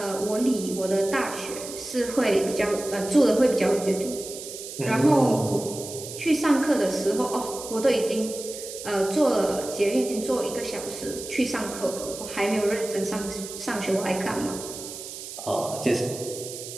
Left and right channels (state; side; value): noise; right; hiss, 11 dB below the sound